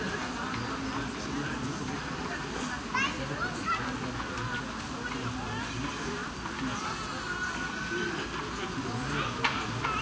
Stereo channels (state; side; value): identical; both; correlation 1.00